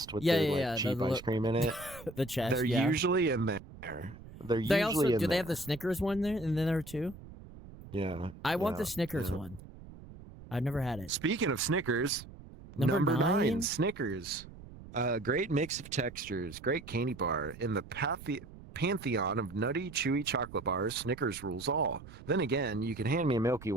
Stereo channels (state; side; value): noise; right; rumble, 17 dB below the sound